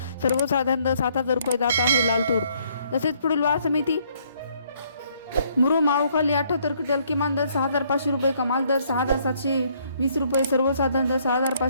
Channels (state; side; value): inverted; both; correlation -0.67